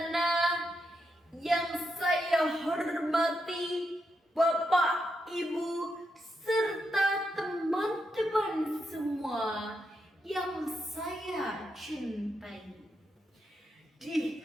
yang saya hormati, Bapak, Ibu, serta teman-teman semua yang saya cintai. Di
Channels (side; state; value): both; normal; correlation 0.83